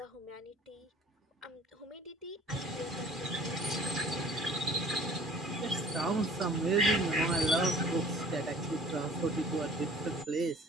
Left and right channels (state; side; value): normal; both; correlation 0.51